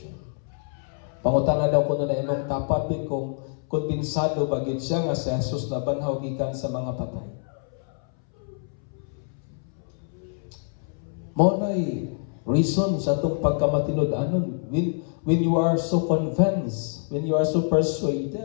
Pangutana daw ko na imong tapat kung kumpinsado bagid siya nga si Jesus nabanhaw gikan sa mga patay. Mao nay reason sa itong pagkamatinud-anon. When you are so convinced, when you are so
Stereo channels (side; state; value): right; silent; 61 dB below the other